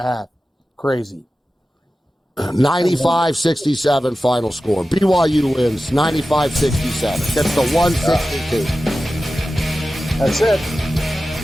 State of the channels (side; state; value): both; normal; correlation 0.94